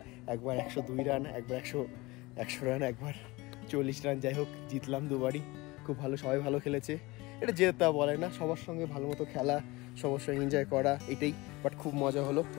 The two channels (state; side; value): quieter; right; 22.4 dB